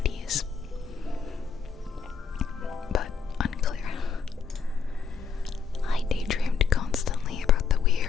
but unclear. I daydreamed constantly about the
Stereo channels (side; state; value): right; quieter; 5.8 dB